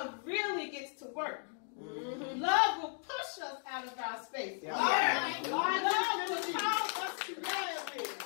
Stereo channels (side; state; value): right; silent; 54 dB below the other